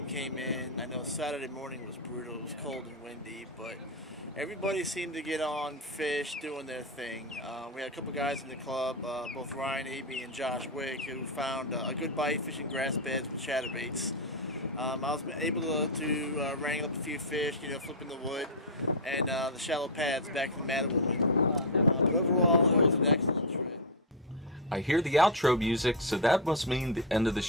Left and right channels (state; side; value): normal; both; correlation 0.03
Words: came in. I know Saturday morning was brutal. It was cold and windy, but everybody seemed to get on fish, doing their thing. We had a couple guys in the club, both Ryan Abey and Josh Wick, who found a good bite fishing grass beds with chatterbaits. I was able to wrangle up a few fish, flipping the wood, and the shallow pads back in the Mattawoman. But overall, it was an excellent trip. I hear the outro music, so that must mean the end of the